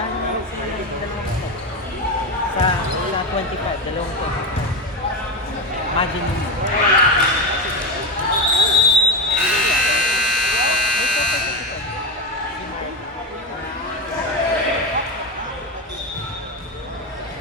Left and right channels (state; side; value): normal; both; correlation 0.16